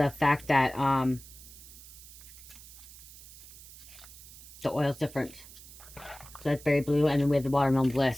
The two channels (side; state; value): right; noise; hiss, 18 dB below the sound